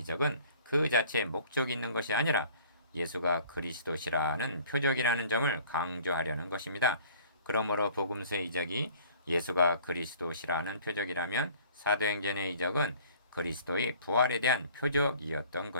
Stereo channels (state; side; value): inverted; both; correlation -0.52